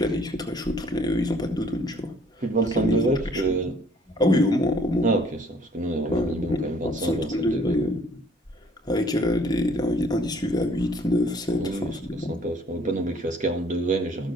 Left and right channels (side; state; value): both; normal; correlation 0.59